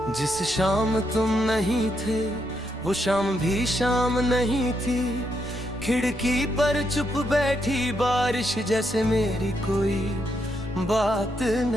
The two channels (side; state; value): right; noise; rumble, 23 dB below the sound